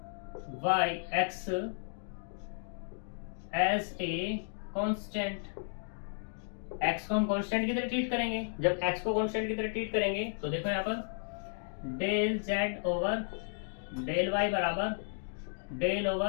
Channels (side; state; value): right; silent; digital silence